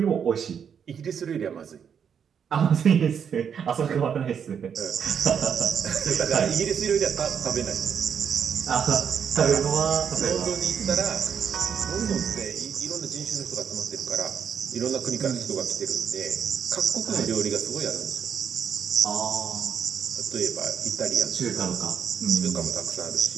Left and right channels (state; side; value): quieter; left; 7.6 dB